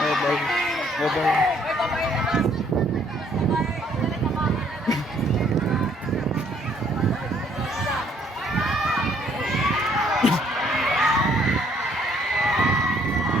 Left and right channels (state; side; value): normal; both; correlation 0.65